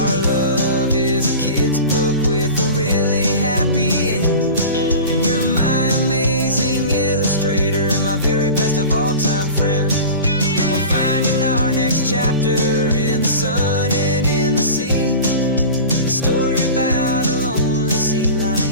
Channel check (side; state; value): both; inverted; correlation -0.35